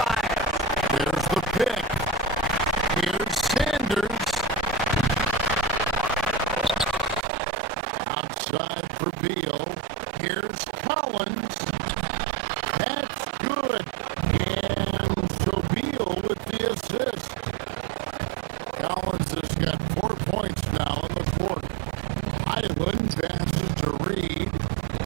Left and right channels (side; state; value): left; drops out; at 7.2 s